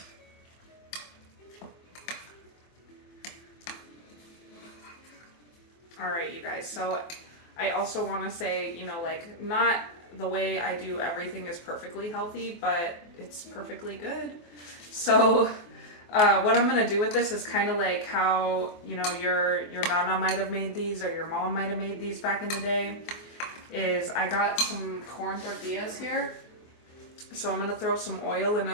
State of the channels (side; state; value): right; late; 24 ms